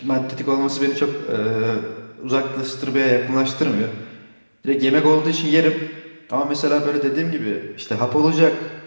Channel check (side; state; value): both; inverted; correlation -1.00